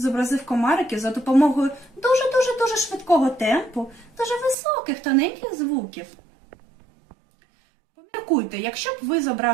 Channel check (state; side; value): drops out; left; at 4.5 s